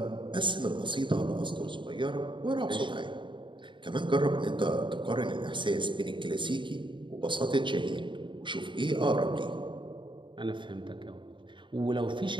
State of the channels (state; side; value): late; left; 0.23 ms